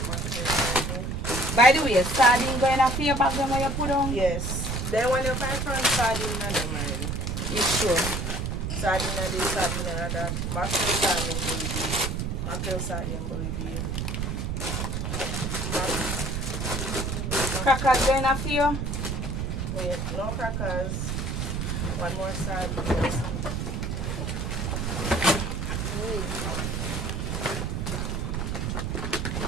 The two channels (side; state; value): right; noise; rumble, 2 dB below the sound